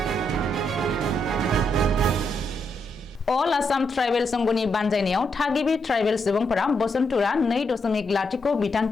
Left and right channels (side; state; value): both; normal; correlation 0.80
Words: अल आसाम ट्राइबेल संघनि बानजायनायाव थागिबि ट्राइबेल सुबुंफोरा बसन्तुरा 2.0